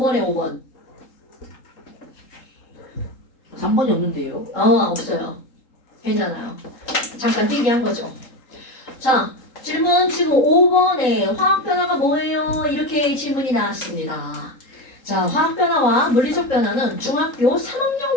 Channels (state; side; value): late; right; 3.8 ms